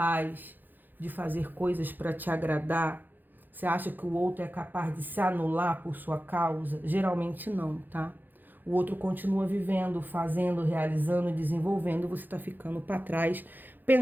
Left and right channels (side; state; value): left; late; 0.088 ms